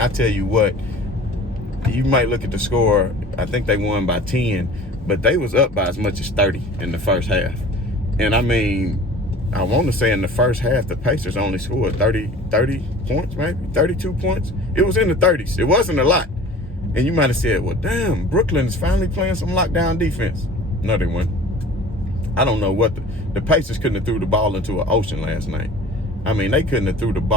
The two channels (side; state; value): both; normal; correlation 0.44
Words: tell you what, you might look at the score. I think they won by 10, but they was up by as much as 30 in the first half. And, I mean, I want to say in the first half, the Pacers only scored 30 points, maybe 32 points. It was in the 30s. It wasn't a lot. And you might have said, well, damn, Brooklyn is finally playing some lockdown defense. No, they weren't. I don't know what the Pacers couldn't have threw the ball into an ocean last night. I mean, they couldn't have threw the